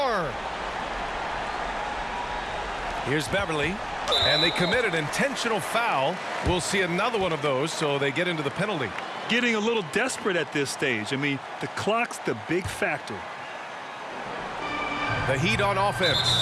Here's Beverly. And they commit an intentional foul. We'll see another one of those, so they get into the penalty. Getting a little desperate at this stage. I mean, the clock's the big factor. The Heat on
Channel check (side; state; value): both; identical; correlation 1.00